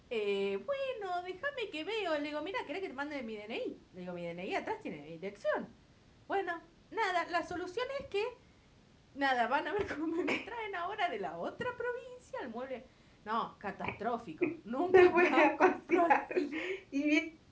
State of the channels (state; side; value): identical; both; correlation 1.00